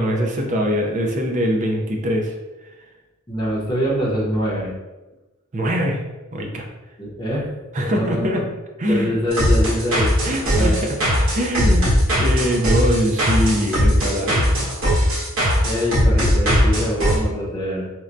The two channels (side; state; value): both; normal; correlation 0.70